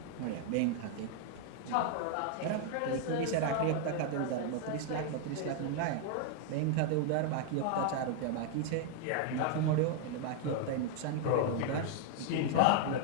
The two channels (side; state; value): both; different; correlation 0.00